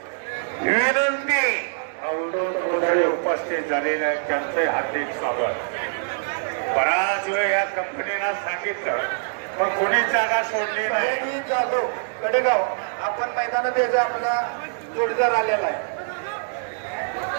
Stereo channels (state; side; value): silent; left; digital silence